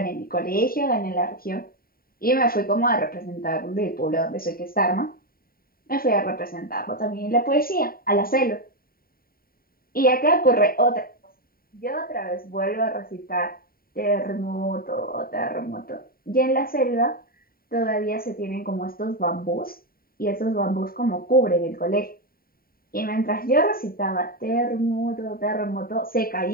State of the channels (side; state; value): right; late; 0.43 ms